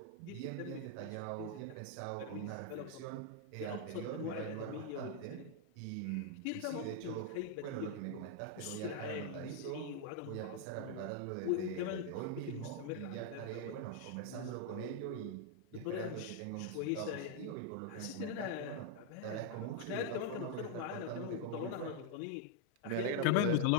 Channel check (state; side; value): different; both; correlation 0.00